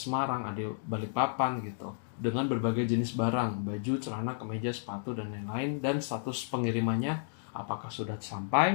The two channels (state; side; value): silent; right; digital silence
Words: ada Balikpapan gitu. Dengan berbagai jenis barang, baju, celana, kemeja, sepatu, dan lain-lain. Dan status pengirimannya, apakah sudah